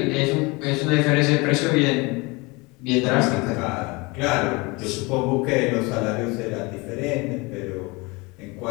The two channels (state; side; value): quieter; right; 25.9 dB